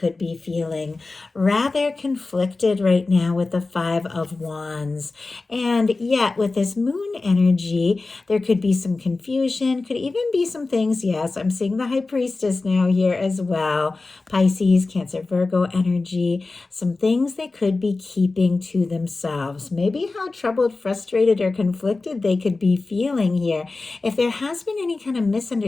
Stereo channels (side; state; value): right; quieter; 3.6 dB